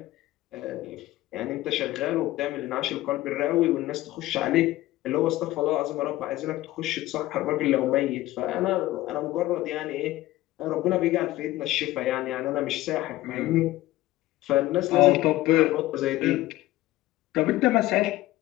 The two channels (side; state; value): right; quieter; 16.7 dB